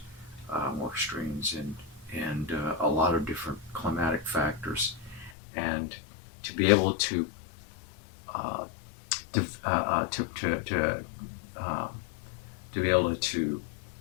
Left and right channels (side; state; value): right; drops out; at 5.3 s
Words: more extremes in a lot of different climatic factors. And to be able to be able to